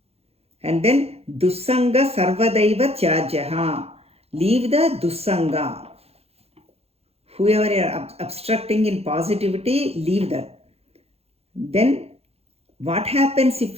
And then, Dussanga Sarvadaiva Tyajaha. Leave the Dussanga. Whoever you are obstructing in positivity, leave that. Then, what happens if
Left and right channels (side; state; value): left; late; 0.29 ms